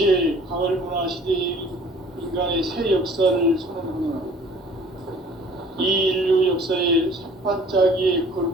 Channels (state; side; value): normal; both; correlation 0.51